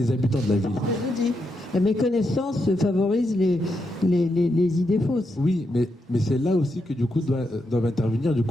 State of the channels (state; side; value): normal; both; correlation 0.83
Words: habitants de la ville. Je vous dis, la méconnaissance favorise les idées fausses. Oui, mais c'est là aussi que du coup doivent intervenir du